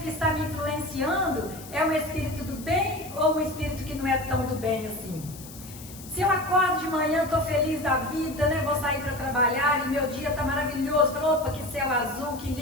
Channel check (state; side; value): noise; left; hiss, 16 dB below the sound